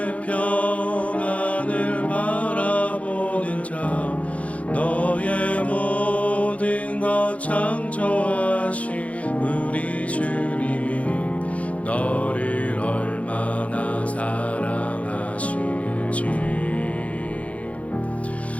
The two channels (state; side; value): late; right; 0.066 ms